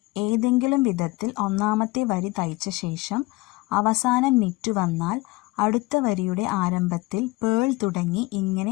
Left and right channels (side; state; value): right; quieter; 22.3 dB